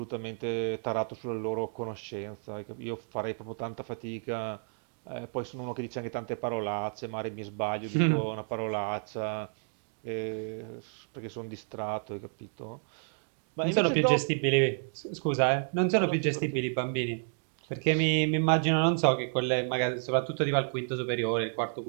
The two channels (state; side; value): silent; left; 57 dB below the other